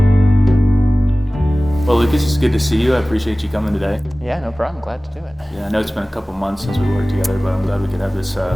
Well, Lucas, it's good to see you. I appreciate you coming today. Yeah, no problem. Glad to do it. Yeah, I know it's been a couple months since we worked together, but I'm glad we could have this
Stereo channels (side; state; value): both; normal; correlation 0.98